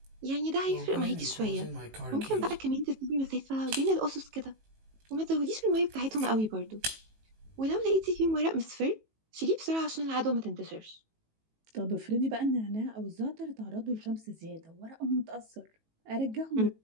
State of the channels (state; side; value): late; left; 18 ms